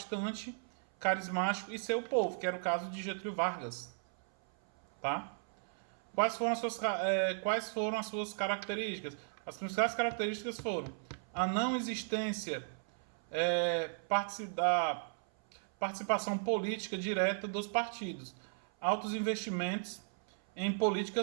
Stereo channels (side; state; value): left; silent; 54 dB below the other